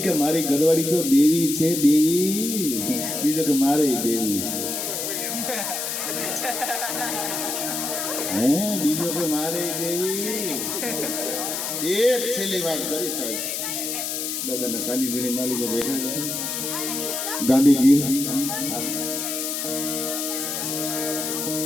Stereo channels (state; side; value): noise; left; hiss, 3 dB below the sound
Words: કે મારી ઘરવાળી તો દેવી છે બીજો કે મારે દેવી બીજો કે મારે દેવી એક છેલ્લી વાત કરી સાહેબ દાદાના સાનિધ્યની માલિકો બેઠા છે ગાંધીગીર